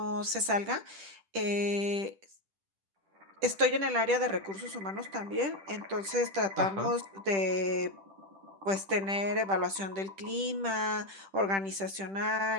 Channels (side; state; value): left; late; 10 ms